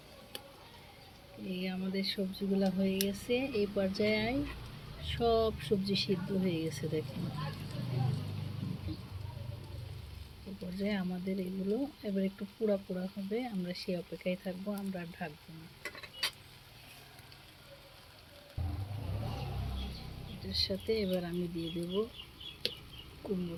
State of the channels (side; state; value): both; identical; correlation 1.00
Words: এই আমাদের সবজিগুলা হয়ে গেছে। এই পর্যায়ে সব সবজি সিদ্ধ হয়ে গেছে, দেখেন। এই পর্যায়ে আমাদের এগুলো এবার একটু পোড়া পোড়া হবে, আমরা সেই অপেক্ষায় থাকবো, আমরা আর ঢাকবো না। এটার সাথে এবার আমি দিয়ে দেব কুমড়ো